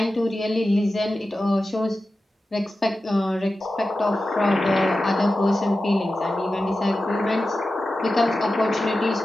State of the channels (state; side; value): normal; both; correlation 0.93